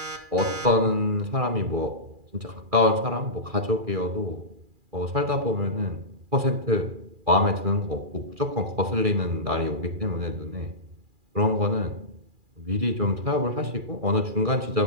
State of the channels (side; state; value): left; late; 2.4 ms